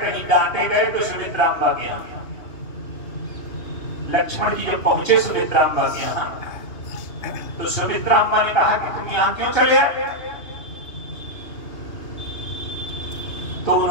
डांटे गए तो सुमित्राम्बा के यहाँ। लक्ष्मण जी जब पहुंचे सुमित्राम्बा के यहाँ तो सुमित्राम्बा ने कहा कि तुम यहाँ क्यों चले आए? तो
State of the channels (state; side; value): late; right; 2.8 ms